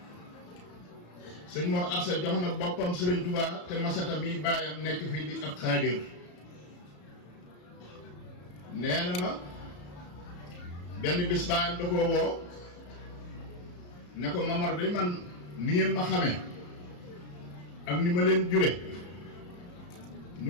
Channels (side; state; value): right; late; 34 ms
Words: sëñ Mor Absa jox na boppam Sëriñ Tuubaa te Masata mi baayam nekk fii di ab xaadir nee na ma benn bis baayam da koo woo ne ko Mamar de man ni ngeen ma xamee ak ni ma leen jure